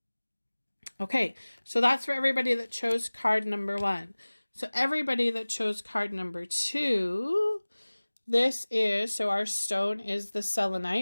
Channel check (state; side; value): inverted; both; correlation -1.00